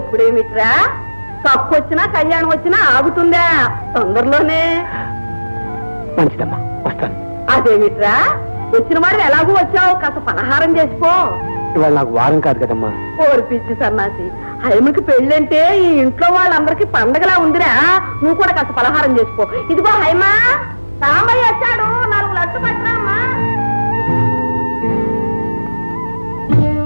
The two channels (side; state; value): both; inverted; correlation -1.00